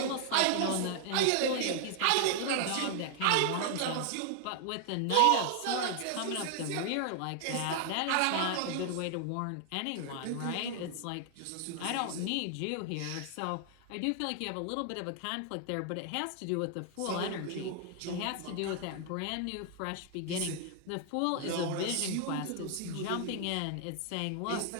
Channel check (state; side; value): different; both; correlation 0.00